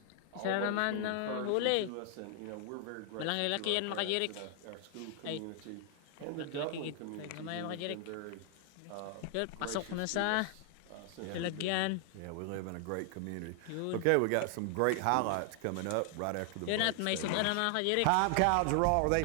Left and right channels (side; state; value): both; different; correlation 0.00